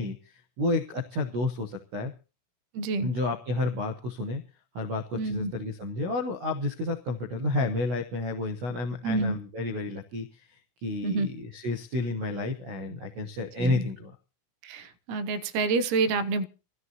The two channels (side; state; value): left; late; 17 ms